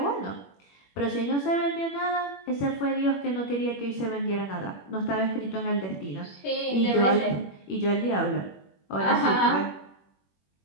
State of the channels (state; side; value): late; right; 21 ms